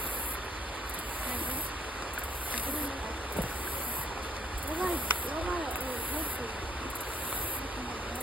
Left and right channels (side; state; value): both; normal; correlation 0.65